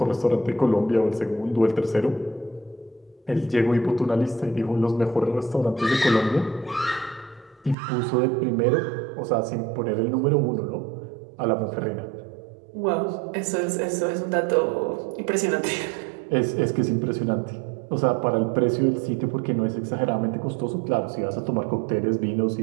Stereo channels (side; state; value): left; drops out; at 7.8 s